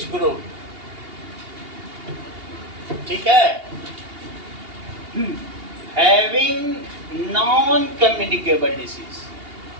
group, ठीक है, having non communicable disease,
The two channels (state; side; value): late; left; 2.8 ms